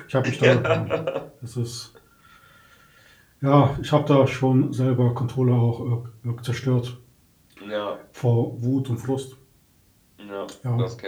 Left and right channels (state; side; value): identical; both; correlation 1.00